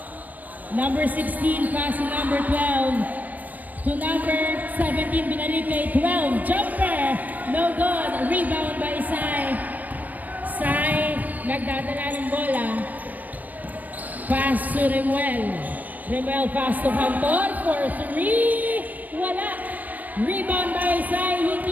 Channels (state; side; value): late; left; 0.080 ms